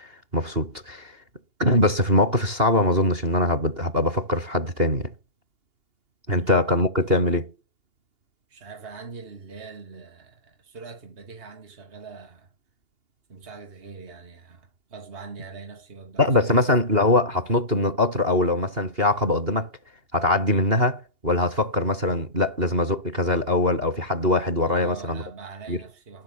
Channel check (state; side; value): late; left; 2.8 ms